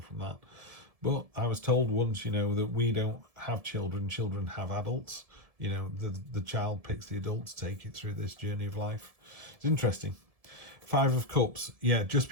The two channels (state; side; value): late; left; 1.7 ms